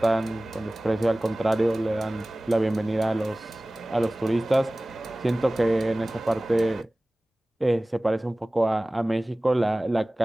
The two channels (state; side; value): normal; both; correlation 0.98